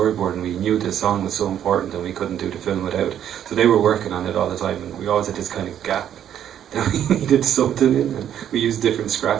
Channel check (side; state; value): left; quieter; 10.1 dB